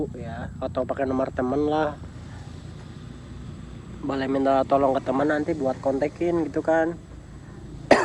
ya, atau pakai nomor temen lah. Boleh minta tolong ke teman nanti buat kontekin gitu kan.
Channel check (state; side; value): identical; both; correlation 1.00